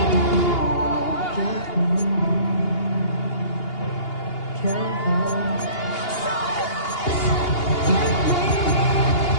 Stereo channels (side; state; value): right; late; 2.8 ms